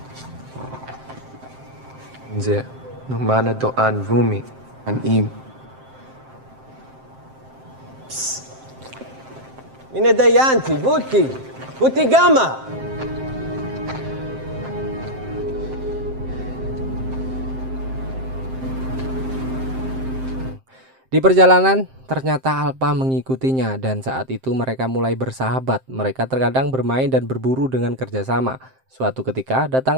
Nze, numana doan vumi. An im. Mine dayanti, buti, buti gama. Di perjalanan, ternyata Alpa mengikutinya dan saat itu mereka mulai bersahabat. Mereka terkadang bermain dan berburu dengan kerjasama. Suatu ketika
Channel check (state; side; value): late; left; 7.6 ms